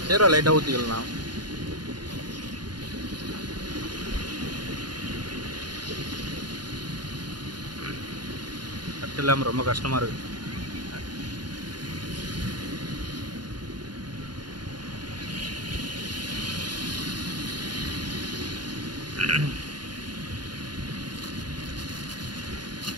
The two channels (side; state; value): left; late; 0.71 ms